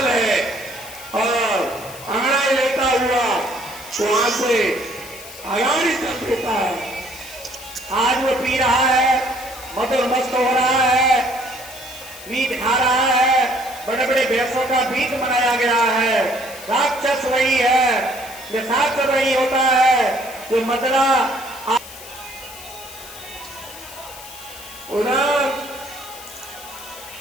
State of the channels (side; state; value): left; noise; hiss, 15 dB below the sound